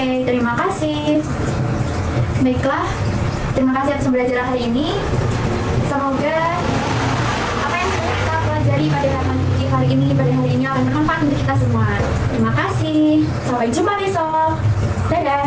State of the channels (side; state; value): both; identical; correlation 1.00